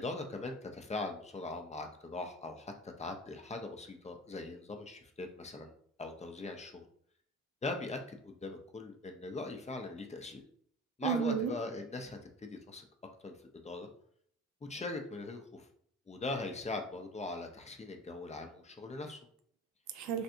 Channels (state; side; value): normal; both; correlation 0.38